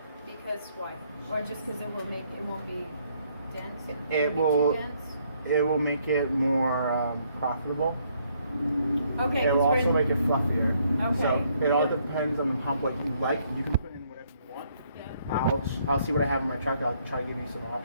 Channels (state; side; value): inverted; both; correlation -0.69